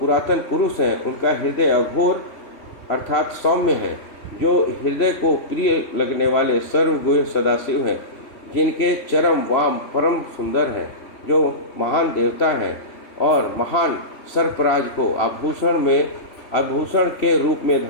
पुरुष हैं, उनका हृदय अघोर अर्थात सौम्य है, जो हृदय को प्रिय लगने वाले सर्वगुह्य सदाशिव हैं, जिनके चरम वाम परम सुंदर हैं, जो महान देवता हैं और महान सर्पराज को आभूषण के रूप में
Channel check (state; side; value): late; right; 3.0 ms